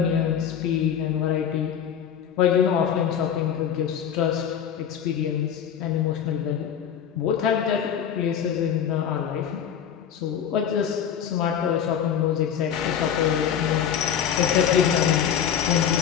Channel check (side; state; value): right; quieter; 8.6 dB